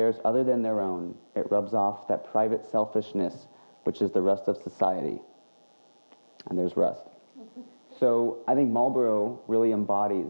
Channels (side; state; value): both; inverted; correlation -1.00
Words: other than their own, it rubs off that private selfishness which is the rust of society. And there's rust. So I think Marlboro really embodies